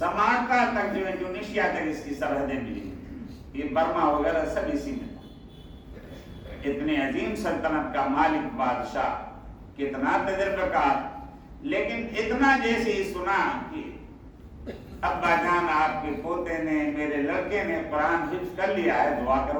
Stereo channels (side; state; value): both; identical; correlation 1.00